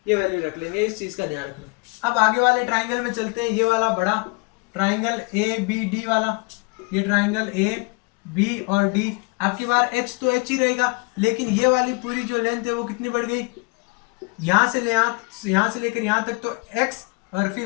ये वैल्यू रख लेंगे, इस चीज का ध्यान रखना। अब आगे वाले ट्राइंगल में चलते हैं, ये वाला बड़ा ट्राइंगल ए बी डी वाला, ये ट्राइंगल ए बी और डी। आपकी बार एच तो एच ही रहेगा, लेकिन ये वाली पूरी जो लेंथ है वो कितनी बढ़ गई, यहाँ से लेकर यहाँ तक तो x और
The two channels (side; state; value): right; quieter; 29.1 dB